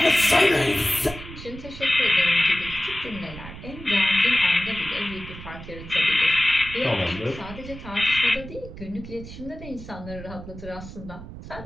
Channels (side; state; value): right; noise; rumble, 13 dB below the sound